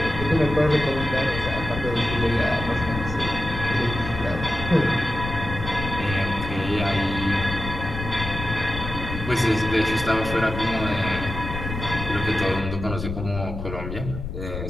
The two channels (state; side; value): noise; left; rumble, 7 dB below the sound